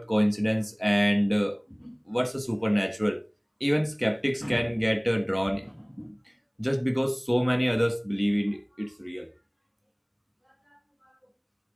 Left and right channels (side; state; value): both; identical; correlation 1.00